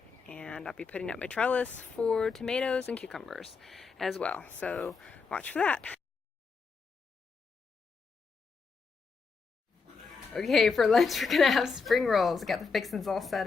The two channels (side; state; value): right; quieter; 4.9 dB